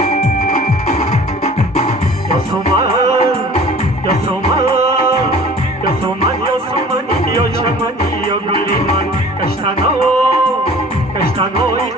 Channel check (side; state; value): both; normal; correlation 0.46